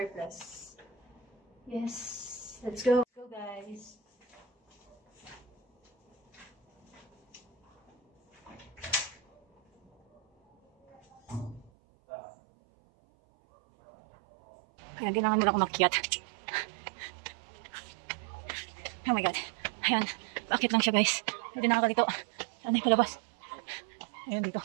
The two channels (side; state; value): left; drops out; at 11.7 s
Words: Yes. Let's go. Let's go, guys. Kaya kailangan mo na ako makiat. Oh my god. Ayan. Bakit lang siya, guys? Hindi na ako dito. Saan ay palabas? Ayun dito.